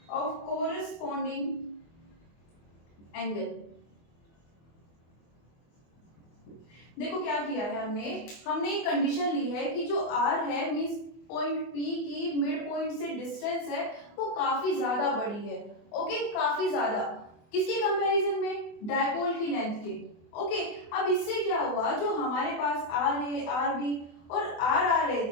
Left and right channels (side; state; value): right; late; 24 ms